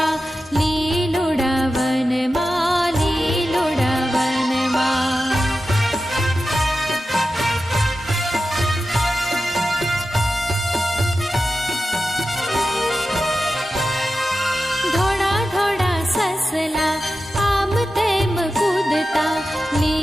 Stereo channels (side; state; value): both; normal; correlation 0.92